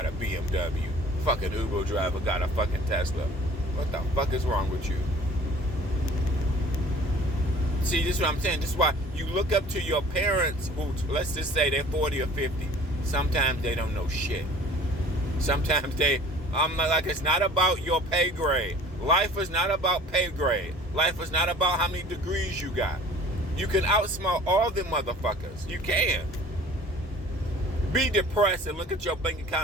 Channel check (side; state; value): both; normal; correlation 0.48